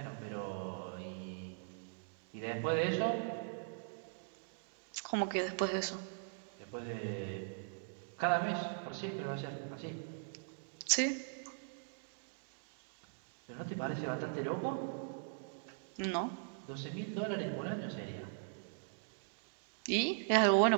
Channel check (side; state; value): left; silent; digital silence